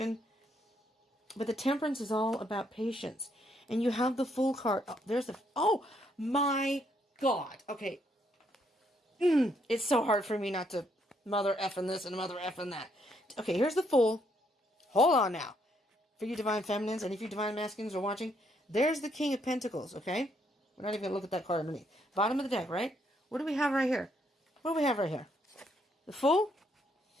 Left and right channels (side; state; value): both; normal; correlation 0.72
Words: But the Temperance is all about patience. And you have the Fool card. Oh, there's the... oh, my God. Okay. It's so hard for me not to mother effing this and mother effing that. Okay, here's the Fool. Hold on now. For you Divine Feminines, and if you Divine Masculines are watching, there's the King of Pentacles, okay? We're not even going to look at that card underneath. Bottom of the deck, right? What do we have right here? What do we have right here? The Fool